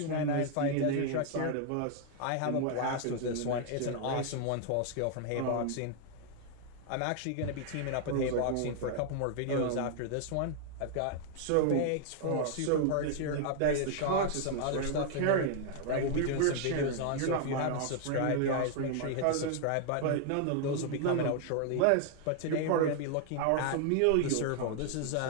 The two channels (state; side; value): different; both; correlation 0.00